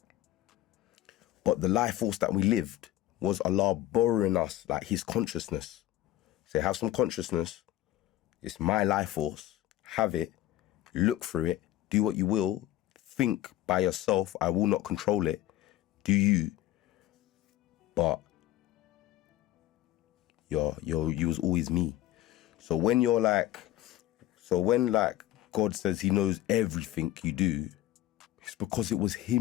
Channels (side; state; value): right; quieter; 14.3 dB